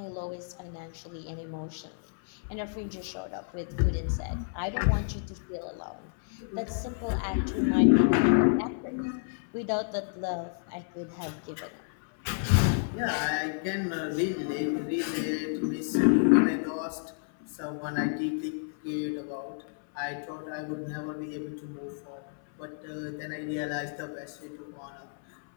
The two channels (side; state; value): right; silent; 57 dB below the other